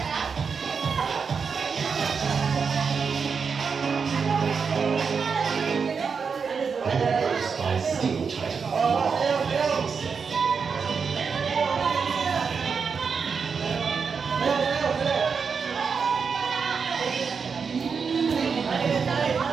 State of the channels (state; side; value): quieter; left; 5.7 dB